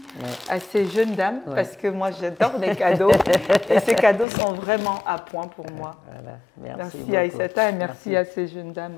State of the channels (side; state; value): right; drops out; at 4.2 s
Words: à ces jeunes dames parce que moi, j'adore les cadeaux. Et ces cadeaux sont vraiment à point pour moi. Merci à Aïssata et merci à ces jeunes